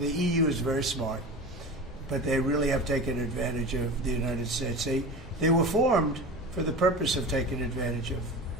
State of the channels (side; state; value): both; normal; correlation 0.31